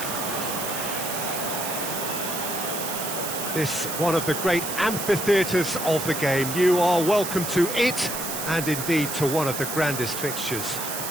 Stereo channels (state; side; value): noise; right; hiss, 5 dB below the sound